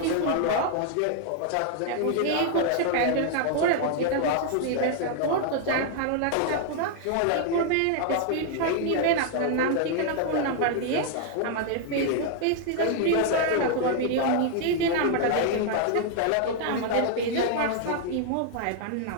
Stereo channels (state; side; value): different; both; correlation 0.00